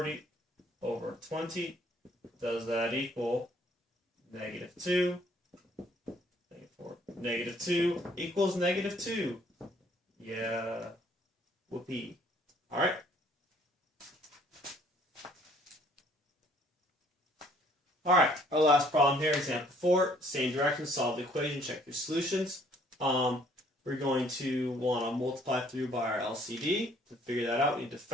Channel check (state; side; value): normal; both; correlation 0.61